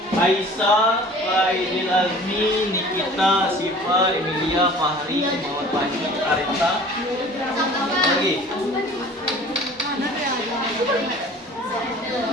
Aisyah, Faidil Azmi, Nikita, Siva, Emilia, Fahri, Muhammad Fahmi, Arita. Lagi.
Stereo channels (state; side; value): normal; both; correlation 0.46